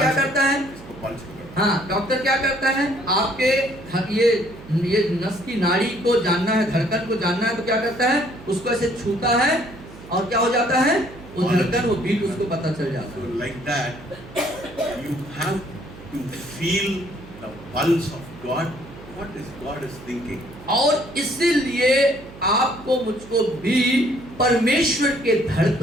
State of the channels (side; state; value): right; noise; hum, 18 dB below the sound